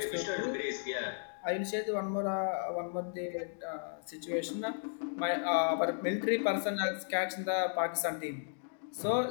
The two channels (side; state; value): right; silent; digital silence